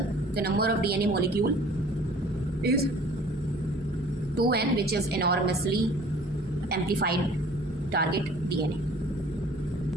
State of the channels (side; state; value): both; normal; correlation 0.51